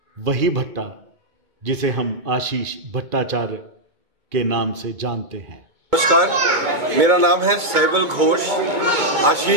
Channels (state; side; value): late; left; 2.2 ms